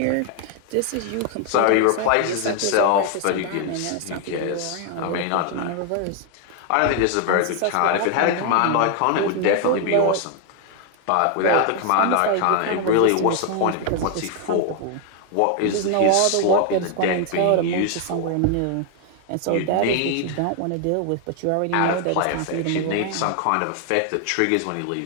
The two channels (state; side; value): different; both; correlation 0.00